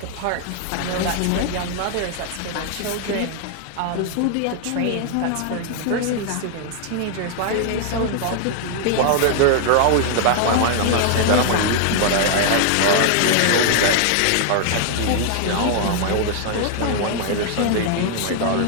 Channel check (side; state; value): both; different; correlation -0.01